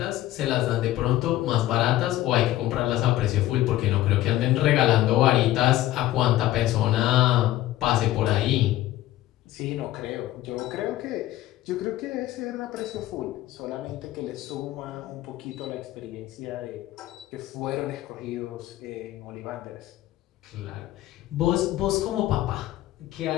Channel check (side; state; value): right; quieter; 14.8 dB